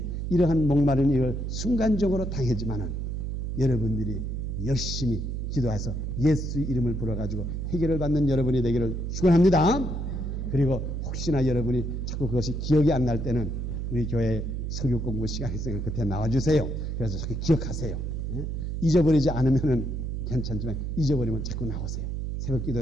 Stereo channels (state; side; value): noise; right; hum, 3 dB below the sound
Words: 이러한 목마른 일을 순간적으로 당했지만은 여러분들이 열심히 기도해서 예수 이름을 불어가지고 해결을 받는 여러분이 되기를 축원합니다. 그리고 혹시나 여러분이 자꾸 그것이 기억이 안 날 때는 우리 교회 설교 공부 시간이 있으니까 그때 나와주세요. 그래서 자꾸 기억하세요. 잊어버리지 않으면은 괜찮지만 잊어버리면 자꾸 나오세요. 새벽